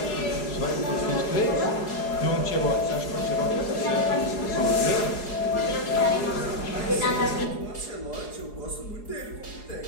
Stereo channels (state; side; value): late; right; 4.8 ms